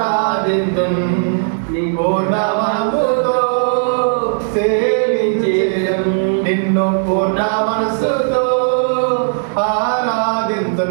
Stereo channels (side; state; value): left; silent; digital silence